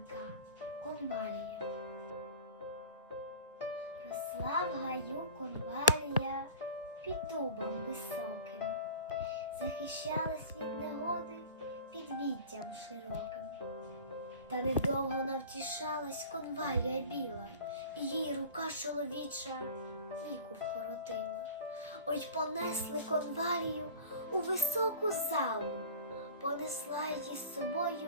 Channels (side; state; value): both; inverted; correlation -0.39